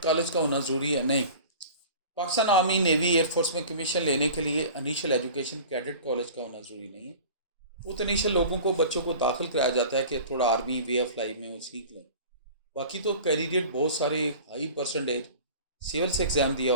कॉलेज का होना ज़रूरी है? नहीं, पाकिस्तान आर्मी, नेवी, एयरफोर्स में कमीशन लेने के लिए इनिशियल एजुकेशन कैडेट कॉलेज का होना ज़रूरी नहीं है। वो तो इनिशियल लोगों को, बच्चों को दाखिल कराया जाता है कि थोड़ा आर्मी वे ऑफ लाइफ में वो सीख लें। बाकी तो कैंडिडेट बहुत सारे हाई परसेंटेज सिविल से एग्ज़ाम दिया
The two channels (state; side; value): inverted; both; correlation -0.40